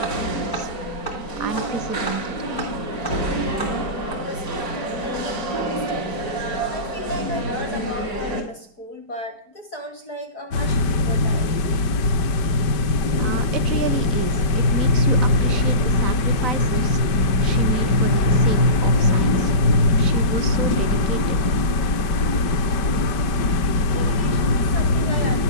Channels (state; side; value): late; right; 5.1 ms